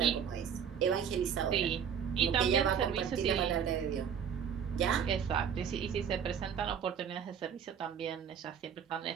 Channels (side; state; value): left; quieter; 7.8 dB